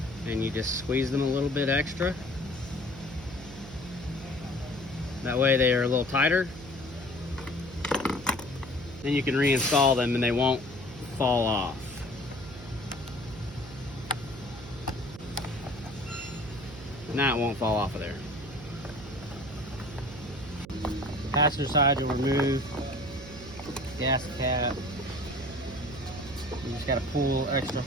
and you just squeeze them a little bit extra. That way they are a little tighter. Then you can reinstall them and they won't fall off. Now it won't fall off of there. Passenger side, you'll remove gas cap. You just got to pull extra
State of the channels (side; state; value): right; noise; hum, 15 dB below the sound